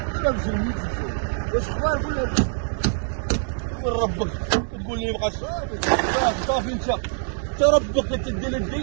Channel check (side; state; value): left; silent; digital silence